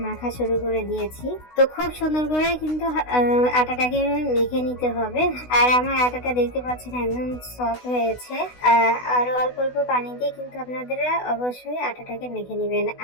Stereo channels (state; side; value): late; right; 16 ms